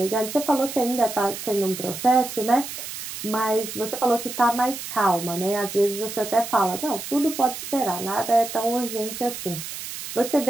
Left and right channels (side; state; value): right; noise; hiss, 9 dB below the sound